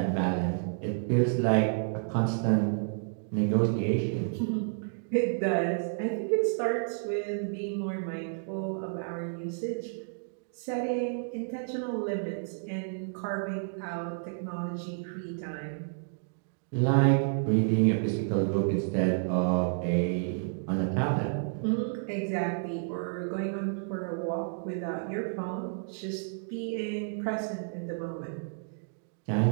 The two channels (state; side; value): silent; left; digital silence